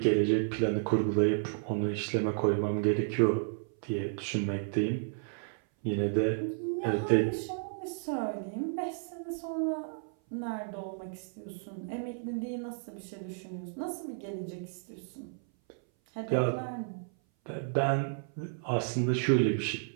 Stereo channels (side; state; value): left; silent; 56 dB below the other